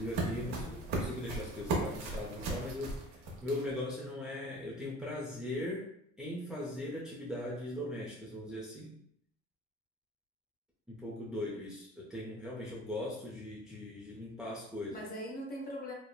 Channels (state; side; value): normal; both; correlation 0.45